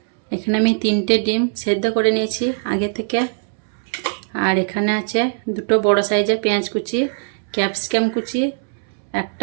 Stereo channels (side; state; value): left; silent; 65 dB below the other